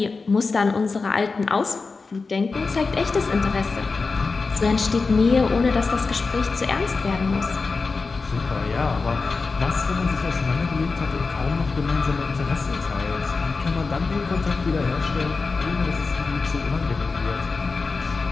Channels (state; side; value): quieter; right; 4.2 dB